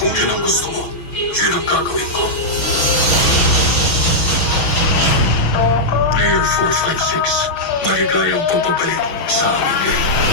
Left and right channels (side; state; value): right; late; 6.2 ms